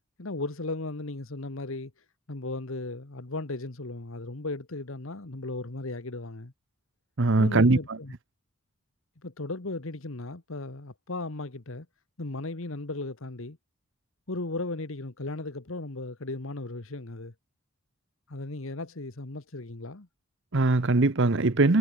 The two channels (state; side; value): normal; both; correlation 0.43